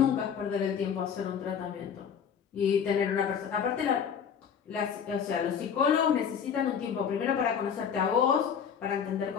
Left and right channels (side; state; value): right; quieter; 7.5 dB